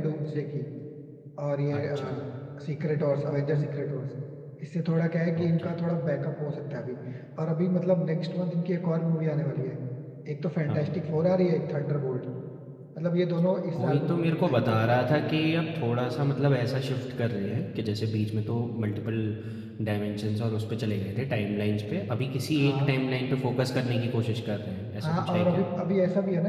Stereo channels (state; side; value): identical; both; correlation 1.00